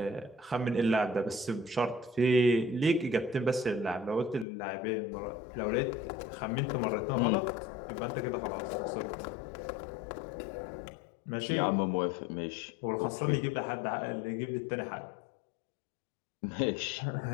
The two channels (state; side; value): drops out; right; at 4.5 s